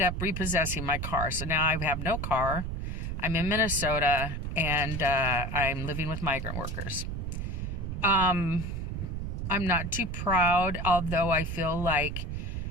up repossessing my car. So now I have no car. I'm in Minnesota, and I'm living with migrant workers. I'm not too proud, although I feel like,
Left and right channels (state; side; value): noise; right; rumble, 4 dB below the sound